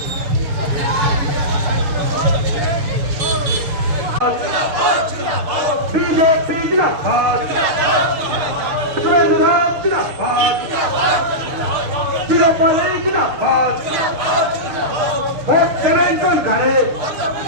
বিজেপি জিন্দাবাদ সুরেন্দ্রনাথ জিন্দাবাদ চিরপালে জিন্দাবাদ ভোট দেবেন কোনখানে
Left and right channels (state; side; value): late; left; 6.4 ms